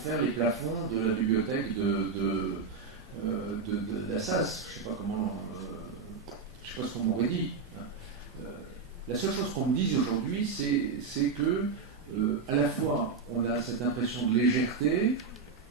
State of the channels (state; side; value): quieter; left; 4.9 dB